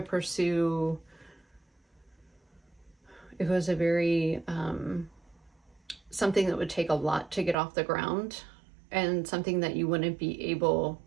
pursue. It was a very something that would take a lot to get off the ground, and something that you wouldn't be able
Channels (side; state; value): left; drops out; at 7.6 s